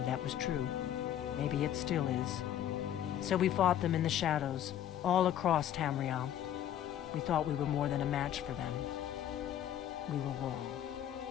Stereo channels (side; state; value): right; quieter; 11.0 dB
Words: that was true. Maybe it still is. So we fought them in the shadows, all across Tamriel. We thought we were more than a match for them. We were wrong.